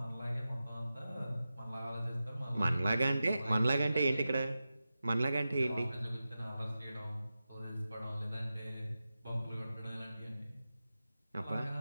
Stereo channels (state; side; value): inverted; both; correlation -0.93